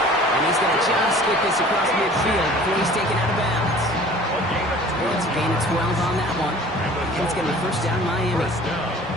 and he's going to just get this across midfield before he's taken out of bounds. It's a gain of 12 on that one. And it's going to be first down Miami.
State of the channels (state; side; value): normal; both; correlation 0.47